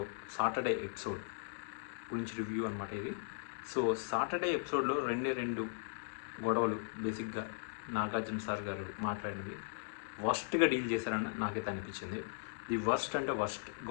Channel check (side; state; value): right; silent; digital silence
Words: సాటర్డే ఎపిసోడ్ గురించి రివ్యూ అనమాట ఇది. సో సాటర్డే ఎపిసోడ్లో రెండు గొడవలు బేసిక్గా నాగార్జున సార్ గారు మాట్లాడినవి వర్స్ట్గా డీల్ చేశారని నాకైతే అనిపించింది. ది వర్స్ట్ అంటే వర్స్ట్.